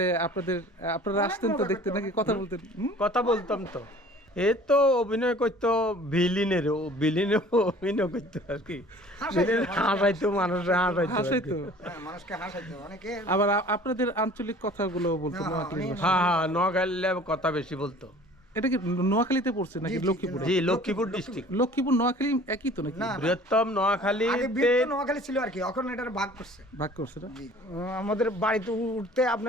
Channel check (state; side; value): normal; both; correlation 0.48